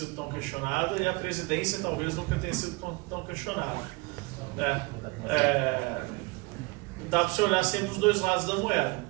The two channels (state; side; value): quieter; left; 25.6 dB